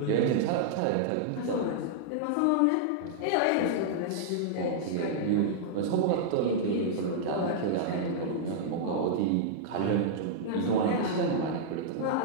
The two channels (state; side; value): different; both; correlation -0.02